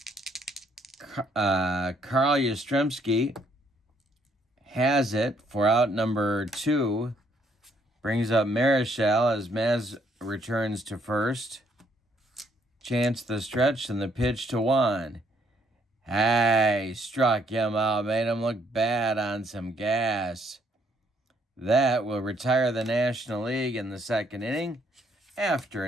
Carl Yastrzemski has it for out number 2. Brings up Marichal as Maz returns to first. Chance the stretch, and the pitch to Juan. Hey, struck him out, made him look bad on some gas. That will retire the National League in the second inning. After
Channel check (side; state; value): both; normal; correlation 0.69